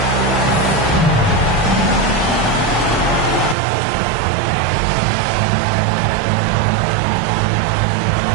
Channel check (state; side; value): drops out; left; at 3.6 s